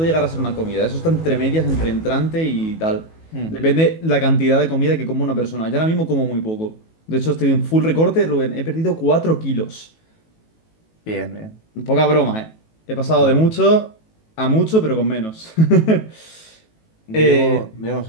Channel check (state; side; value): late; right; 18 ms